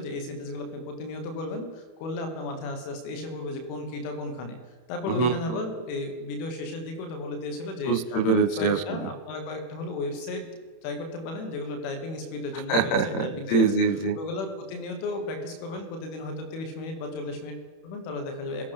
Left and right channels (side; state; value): right; late; 31 ms